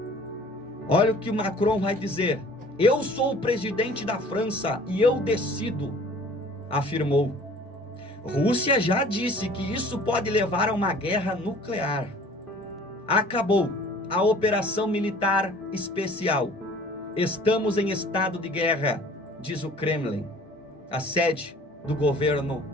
Olha o que o Macron vai dizer: eu sou o presidente da França e eu decido, afirmou. Rússia já disse que isso pode levar a uma guerra nuclear. Acabou a operação militar especial. Estamos em estado de guerra, diz o Kremlin, a sede do governo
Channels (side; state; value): both; normal; correlation 0.50